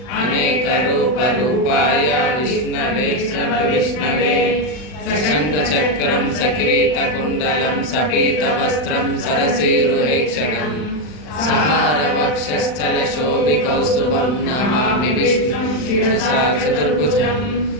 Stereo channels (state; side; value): late; right; 40 ms